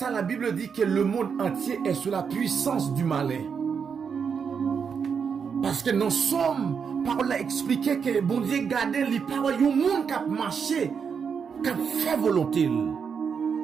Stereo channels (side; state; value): left; quieter; 6.4 dB